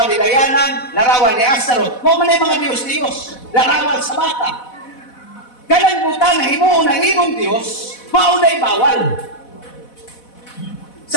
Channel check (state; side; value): late; right; 4.1 ms